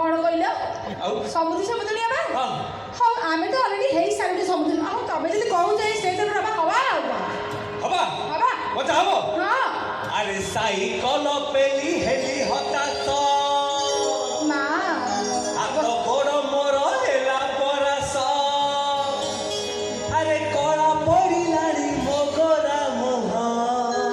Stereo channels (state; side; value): identical; both; correlation 1.00